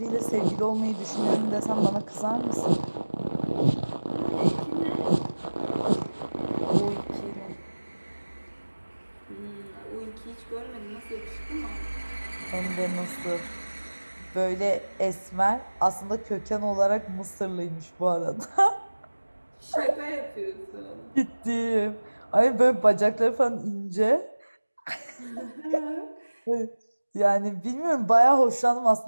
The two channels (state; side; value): inverted; both; correlation -1.00